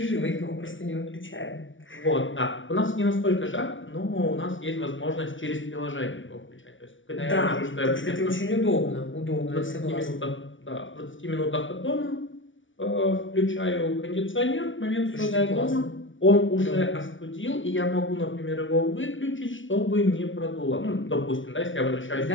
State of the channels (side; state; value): right; late; 0.56 ms